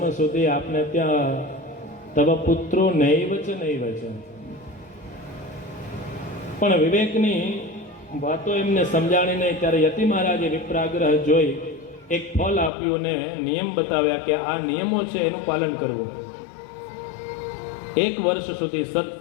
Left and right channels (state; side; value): drops out; right; at 12.7 s